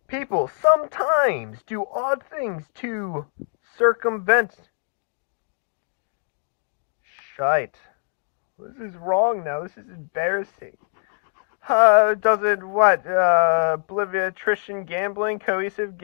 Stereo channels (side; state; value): right; silent; digital silence